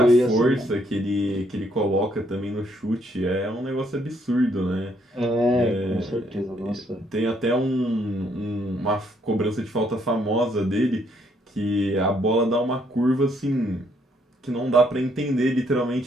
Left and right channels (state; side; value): normal; both; correlation 0.70